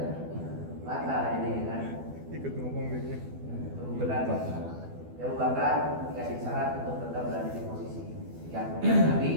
Batal jadi kan. Ikut ngomong dia. Abu Bakar dikasih syarat untuk tetap berada di posisi. Yang kemudian Nabi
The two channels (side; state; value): left; late; 12 ms